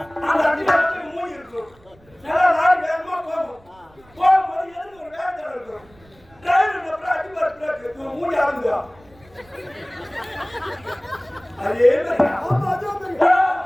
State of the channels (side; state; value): right; noise; rumble, 28 dB below the sound